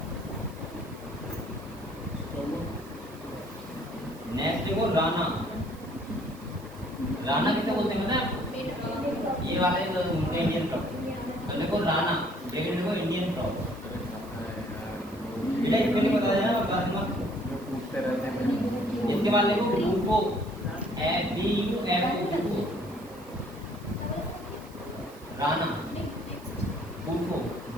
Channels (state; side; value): noise; right; hiss, 24 dB below the sound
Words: नेक्स्ट देखो राना, राना किसे बोलते हैं पता है, ये वाले तो इंडियन फ्रॉग। और देखो राना, ये देखो इंडियन फ्रॉग। बेटा इसको नहीं बता देना बात मत। इसके बाद देखो Bufo, BUFO, Rana, Bufo,